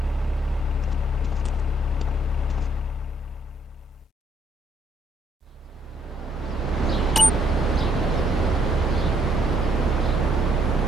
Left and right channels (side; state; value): both; normal; correlation 0.69